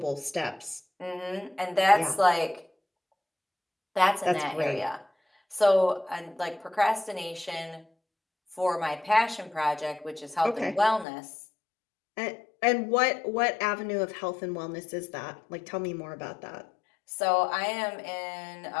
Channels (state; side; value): drops out; right; at 11.1 s